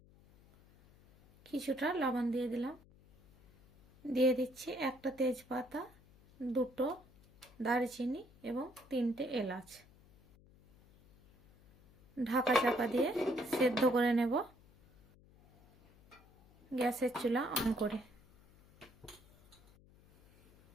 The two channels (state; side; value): noise; left; hum, 27 dB below the sound